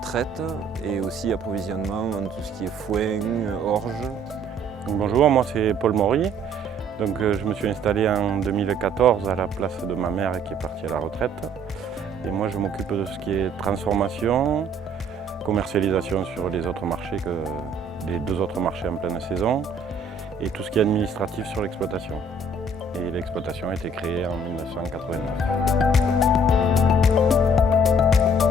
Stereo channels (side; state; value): both; normal; correlation 0.60